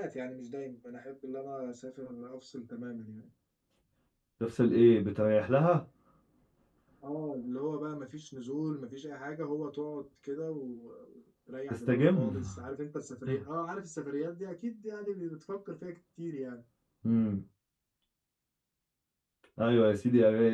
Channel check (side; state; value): both; identical; correlation 1.00